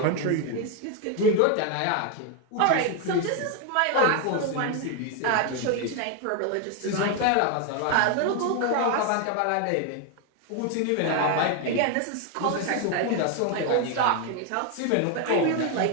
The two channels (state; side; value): different; both; correlation 0.01